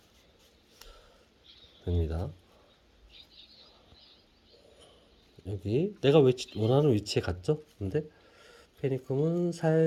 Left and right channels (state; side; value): identical; both; correlation 1.00